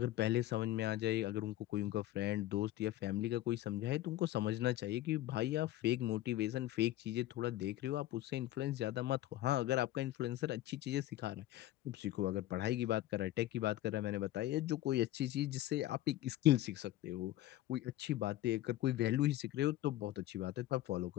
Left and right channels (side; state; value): right; quieter; 14.7 dB